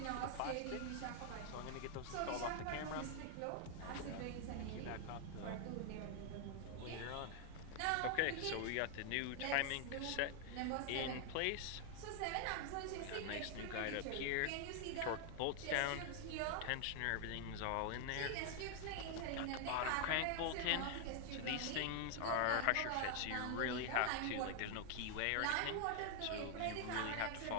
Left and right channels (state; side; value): different; both; correlation 0.00